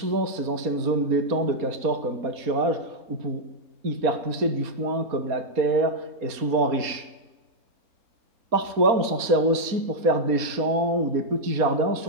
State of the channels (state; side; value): late; left; 4.2 ms